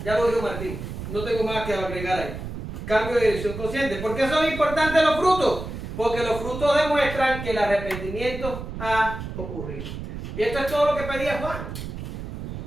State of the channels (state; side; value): noise; right; rumble, 8 dB below the sound